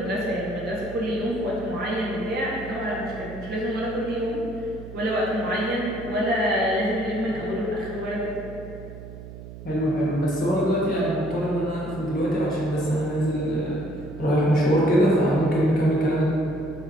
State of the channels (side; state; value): right; noise; hum, 13 dB below the sound